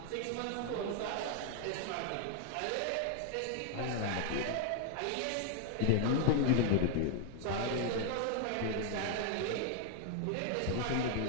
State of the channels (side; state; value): both; different; correlation 0.00